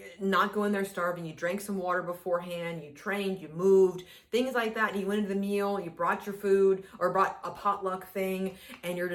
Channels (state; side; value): identical; both; correlation 1.00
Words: not go in there starving, you drank some water beforehand, you trained, you moved, things like that. And you went into the meal, you brought your food or brought a potluck thing, and you're